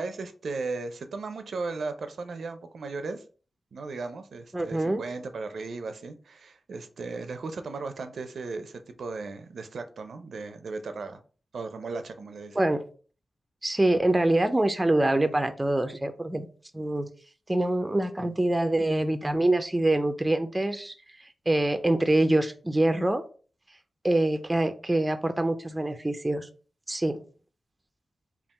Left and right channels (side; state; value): both; normal; correlation 0.97